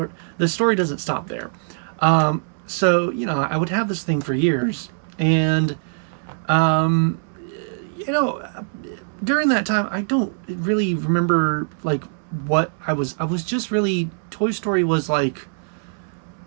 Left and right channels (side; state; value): left; silent; 64 dB below the other